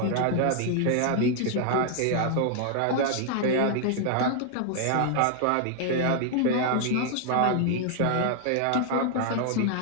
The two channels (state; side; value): different; both; correlation 0.00